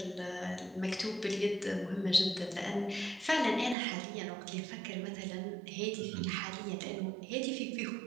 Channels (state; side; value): drops out; left; at 3.8 s